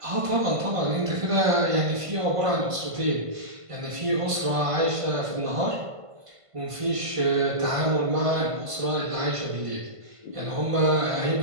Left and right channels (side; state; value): left; late; 1.5 ms